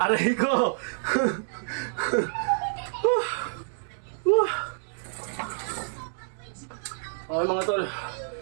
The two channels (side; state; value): left; silent; 59 dB below the other